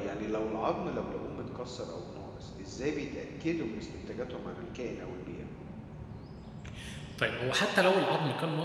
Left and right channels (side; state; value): both; identical; correlation 1.00